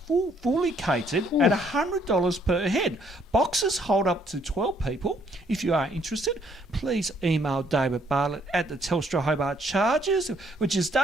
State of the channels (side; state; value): both; normal; correlation 0.67